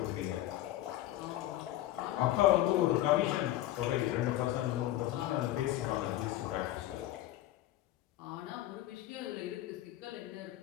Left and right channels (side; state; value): right; quieter; 14.7 dB